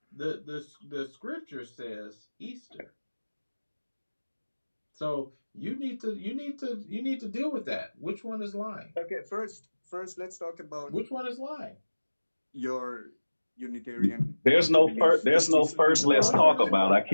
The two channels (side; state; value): both; inverted; correlation -1.00